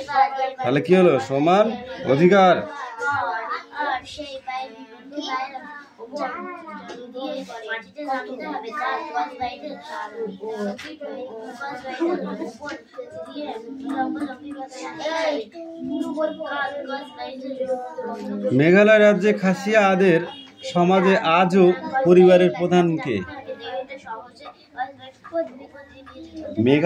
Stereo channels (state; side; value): identical; both; correlation 1.00